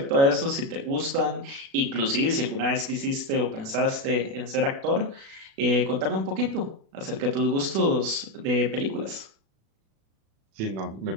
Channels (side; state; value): left; late; 36 ms